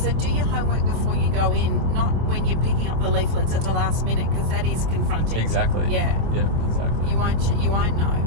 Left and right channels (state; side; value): late; left; 25 ms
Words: do your homework before you go in, not when you're picking up the leaflets at the last minute, because that is confronting. Exactly. Yeah. Yeah. Exactly. You won't know.